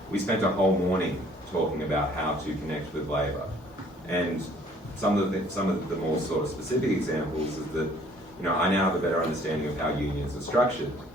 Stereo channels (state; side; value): normal; both; correlation 0.58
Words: we spent a whole morning talking about how to connect with labour. And some of the more sort of specific examples is that, you know, I now have a better understanding of how unions are structured.